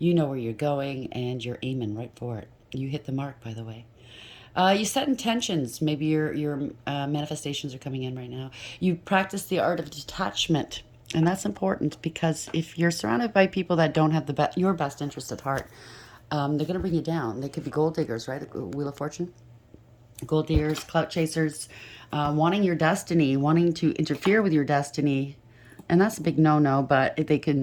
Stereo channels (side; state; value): both; identical; correlation 1.00